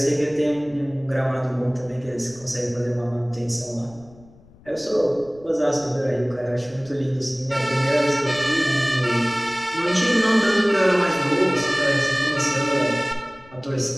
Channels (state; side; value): noise; left; rumble, 25 dB below the sound